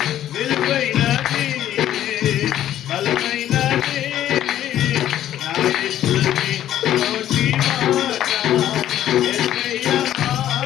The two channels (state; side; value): quieter; right; 11.9 dB